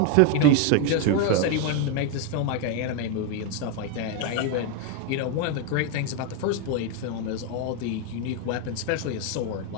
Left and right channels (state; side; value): different; both; correlation 0.01